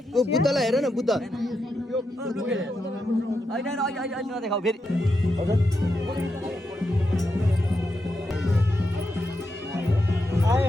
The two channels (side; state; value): both; normal; correlation 0.85